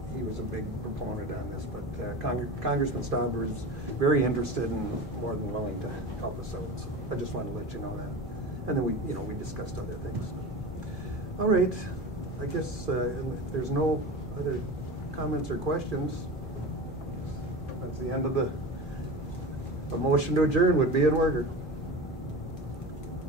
he was a big proponent on this, but Congressman Stauber is very interested and more than willing to help us out. So I just wanted to let you know that. And then we discussed other things. All right, I guess if there's no other comments or questions, that's the end of a motion to adjourn would be in order.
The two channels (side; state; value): both; normal; correlation 0.30